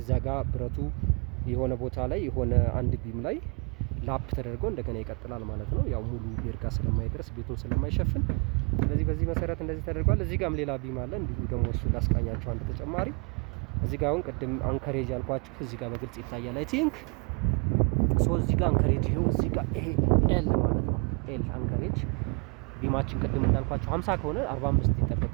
እዛ ጋር ብረቱ የሆነ ቦታ ላይ የሆነ አንድ ቢም ላይ ላፕ ተደርጎ እንደገና ይቀጥላል ማለት ነው። ያው ሙሉ ቤርጋ ስለማይደርስ ቤቱን ስለማይሸፍን፣ ስለዚህ በዚህ መሰረት እንደዚህ ተደርጓል። እዚህ ጋርም ሌላ ቢም አለ እንዲሁ ደግሞ እሱ ላስቃኛቸው አንድ ተጨማሪ። እዚህ ጋር አሁን ቅድም አንከሬጅ ያልኳችሁ እዚህ ጋር በግልጽ ይታያል። አይ ቲንክ እዚህ ጋር አንከሬጅ ይሄው እዚህ ጋር ይሄ ኤል ማለት ነው። ኤል አንከሬጅ ቢማችን ቅድም እንዳልኳችሁ 50 ከሆነ 45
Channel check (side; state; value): left; quieter; 35.8 dB